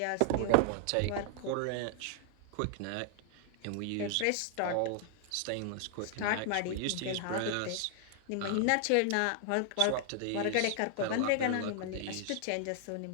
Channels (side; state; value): both; different; correlation 0.00